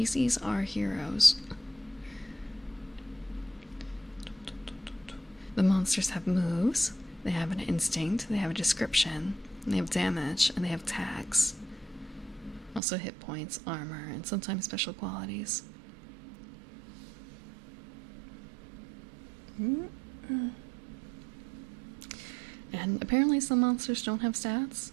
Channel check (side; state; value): left; drops out; at 12.8 s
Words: are heroes. The monsters have moves, they have an instinct, they have a description, and they have damage, and they have tags. Also hit points, armor, and sometimes special qualities. And And apparently some monsters don't have stats.